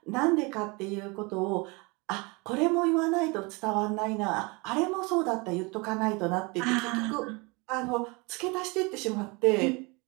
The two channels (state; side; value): quieter; left; 27.6 dB